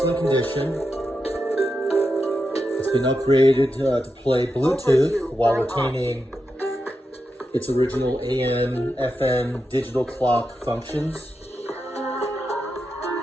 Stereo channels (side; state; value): both; normal; correlation 0.88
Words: condition. It's been upgraded to play Bluetooth while retaining its original AM, FM, digital clock functions.